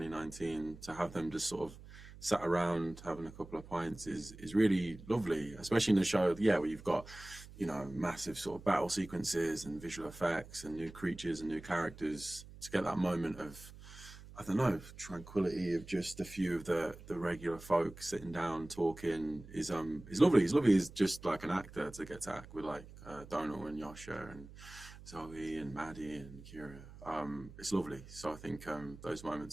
to have them just sort of sat around having a couple of pints is really lovely, especially in the show, yeah, where you've got, you know, massive sort of battle sequences and visual effects and new creatures and new characters. To get that moment of, I don't know, tranquility of just a few of the regular folk sitting down talking is lovely. It's lovely as just like an actor to get to act with like Dónal and Josha and Zoe and Maddie and Ceara. It's lovely. So I think those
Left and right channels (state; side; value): noise; right; hum, 17 dB below the sound